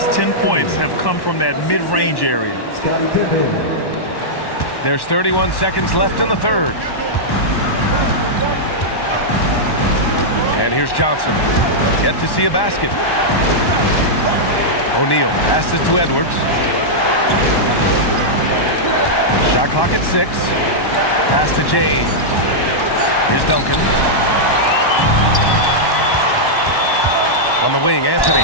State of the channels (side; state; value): right; late; 1.1 ms